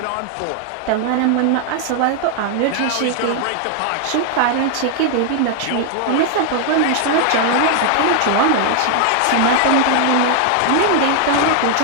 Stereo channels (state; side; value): different; both; correlation 0.00